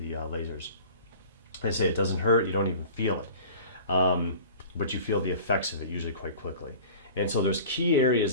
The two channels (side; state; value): both; inverted; correlation -0.42